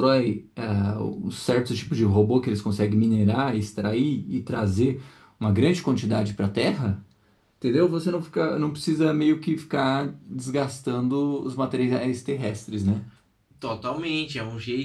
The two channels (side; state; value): both; identical; correlation 1.00